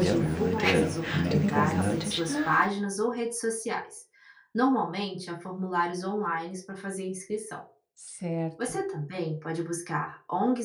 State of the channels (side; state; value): both; identical; correlation 1.00